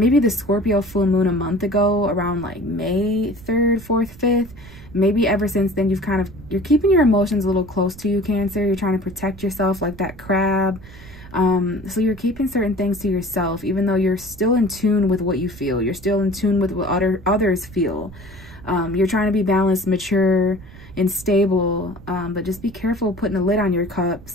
the Scorpio full moon a month ago, around like May 3rd, 4th, 5th, maybe ever since then you're keeping your emotions a little close to you, Cancer. You're trying to protect yourself like that crab. So you're keeping certain things to yourself, even though you're still in tune with what you feel. You're still in tune with what others feel. You're trying to be balanced, mature, and stable, but just be careful putting a lid on your cup.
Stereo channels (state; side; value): noise; right; rumble, 18 dB below the sound